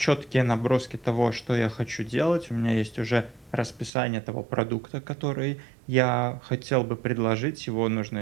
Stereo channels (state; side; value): drops out; left; at 3.9 s